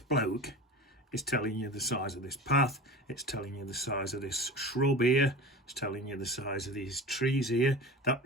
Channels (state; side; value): normal; both; correlation 0.33